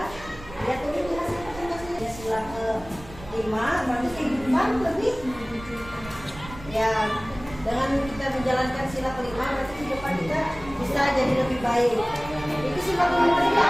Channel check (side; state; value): right; noise; rumble, 16 dB below the sound